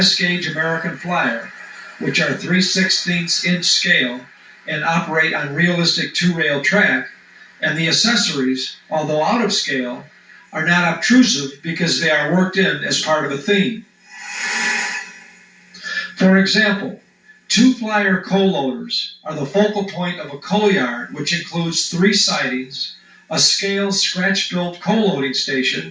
American Flyer which are 3/16" scale and operate on realistic two-rail track, and the accessories, although out of scale, are not obtrusive because they are worked in as part of a theme. For example, two Flyer coal loaders are the focal point of a coal yard, which includes 3 sidings, a scale scratch-built coal loading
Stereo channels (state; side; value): identical; both; correlation 1.00